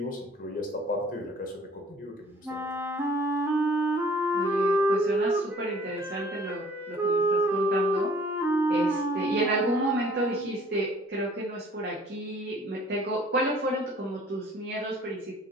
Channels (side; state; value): both; normal; correlation 0.54